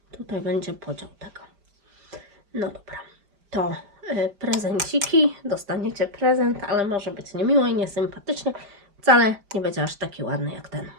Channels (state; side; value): late; left; 5.0 ms